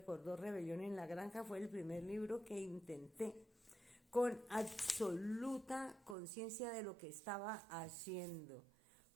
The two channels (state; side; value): drops out; left; at 6.2 s